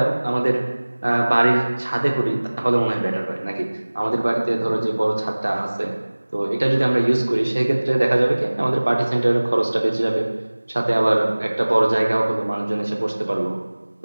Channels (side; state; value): both; inverted; correlation -1.00